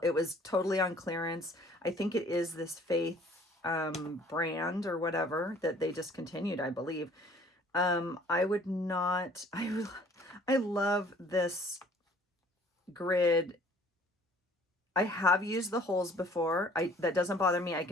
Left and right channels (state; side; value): normal; both; correlation 0.55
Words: It was totally on clearance. I think it is this Faith brand or whatever that they discontinued, I believe. I love this grid. I have used the holes before. That doesn't bother me. I